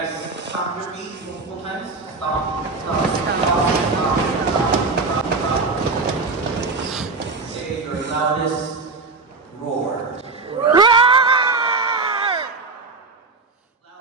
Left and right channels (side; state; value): left; quieter; 4.0 dB